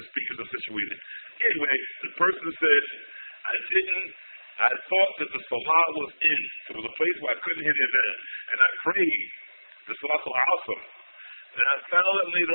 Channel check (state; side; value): inverted; both; correlation -1.00